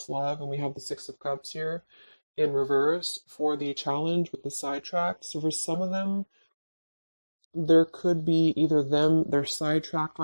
love and we have the Six of Cups here in reverse for the challenge with the sidetracked. So for some of them, there could be either they're sidetracked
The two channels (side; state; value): both; inverted; correlation -1.00